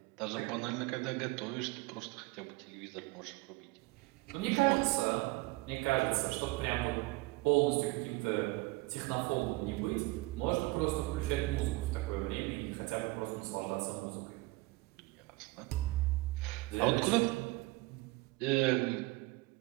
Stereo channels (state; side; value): quieter; left; 22.7 dB